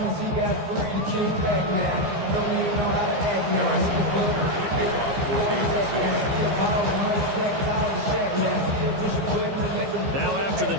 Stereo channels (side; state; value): left; late; 15 ms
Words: Now after the